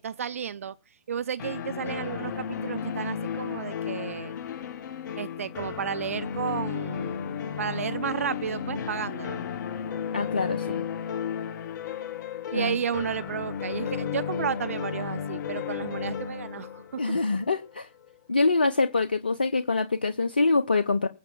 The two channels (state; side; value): inverted; both; correlation -0.64